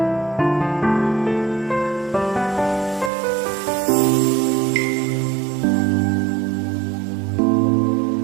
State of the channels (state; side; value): drops out; left; at 3.1 s